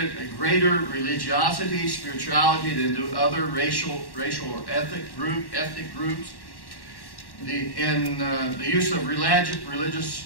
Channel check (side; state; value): right; late; 1.1 ms